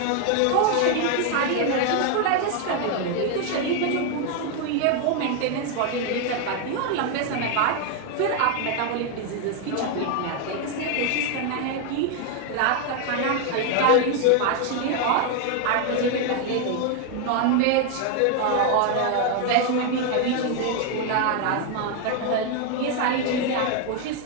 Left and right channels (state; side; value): different; both; correlation 0.01